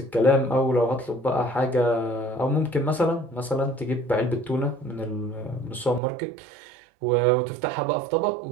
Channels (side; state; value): left; drops out; at 6.0 s